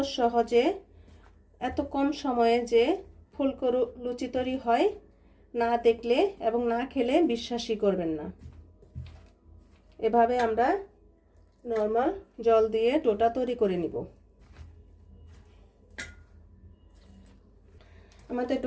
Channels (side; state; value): both; identical; correlation 1.00